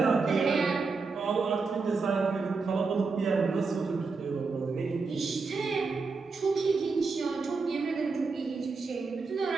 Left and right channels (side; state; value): left; quieter; 4.4 dB